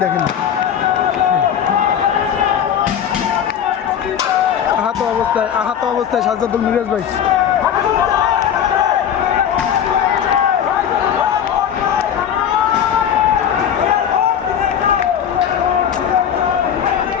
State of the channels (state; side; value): quieter; right; 8.9 dB